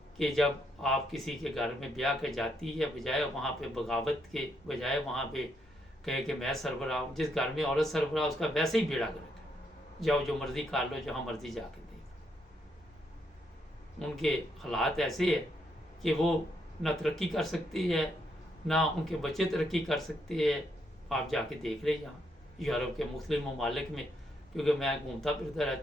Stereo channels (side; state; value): both; normal; correlation 0.76